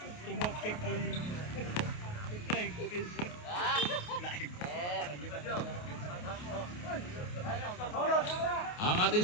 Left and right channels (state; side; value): late; right; 28 ms